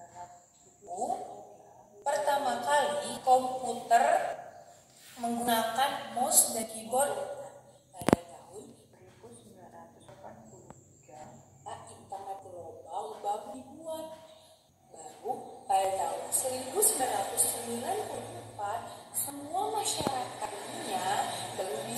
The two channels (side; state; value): both; identical; correlation 1.00